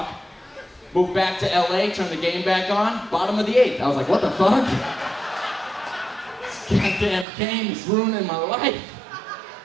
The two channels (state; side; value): drops out; left; at 7.2 s